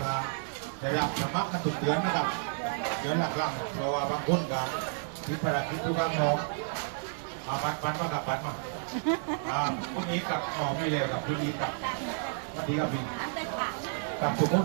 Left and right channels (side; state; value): left; silent; 57 dB below the other